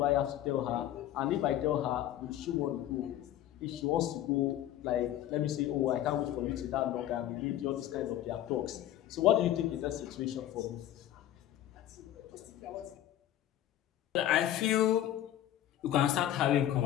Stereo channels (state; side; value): quieter; right; 12.5 dB